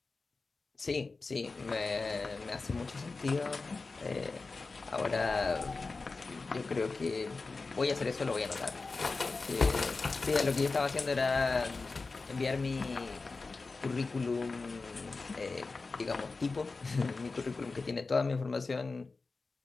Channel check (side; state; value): right; quieter; 3.9 dB